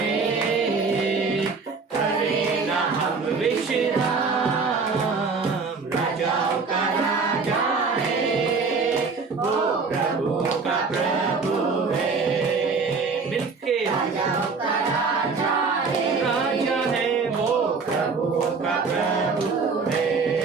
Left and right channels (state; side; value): quieter; left; 4.6 dB